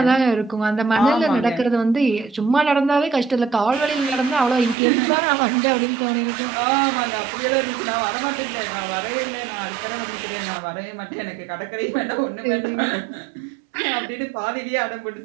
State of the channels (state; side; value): drops out; left; at 4.8 s